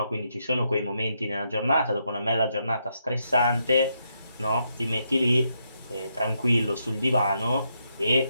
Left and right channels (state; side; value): inverted; both; correlation -0.80